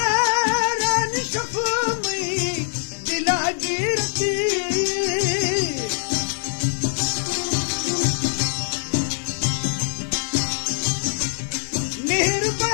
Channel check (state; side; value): silent; right; 58 dB below the other